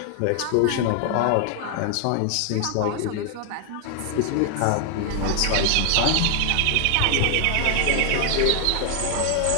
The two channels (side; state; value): both; different; correlation 0.00